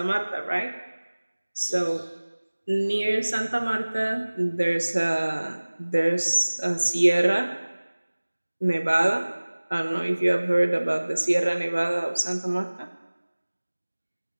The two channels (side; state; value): both; inverted; correlation -1.00